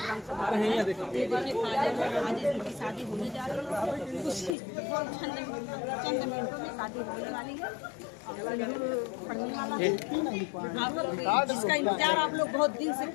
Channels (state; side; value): drops out; right; at 4.5 s